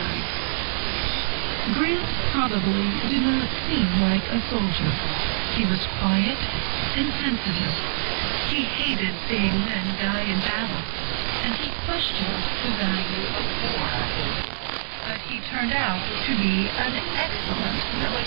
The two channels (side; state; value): left; silent; digital silence